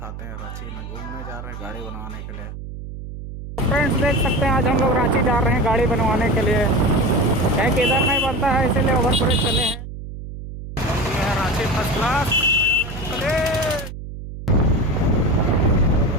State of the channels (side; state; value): right; noise; hum, 10 dB below the sound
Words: हैं। रांची में घूमने जा रहे हैं गाड़ी बनवाने के लिए। फ्रेंड्स देख सकते हैं आज हम लोग रांची जा रहे हैं गाड़ी बनवाने के लिए। क्या किधर नहीं बनता है इसीलिए ओवर ब्रिज चले हैं। ये है रांची फर्स्ट क्लास।